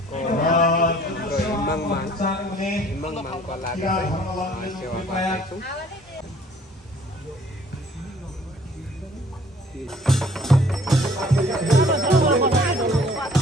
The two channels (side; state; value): both; normal; correlation 0.56